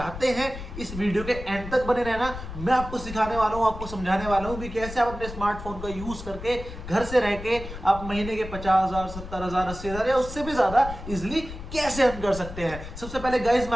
हैं, इस वीडियो के एंड तक बने रहना। मैं आपको सिखाने वाला हूं, आपको समझाने वाला हूं कि कैसे आप अपने स्मार्टफोन का यूज करके घर से रह के आप महीने के 50,000, 70,000, 80,000 या उससे भी ज्यादा इजिली कैसे अर्न कर सकते हैं। सबसे पहले गाइस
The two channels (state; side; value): noise; left; rumble, 10 dB below the sound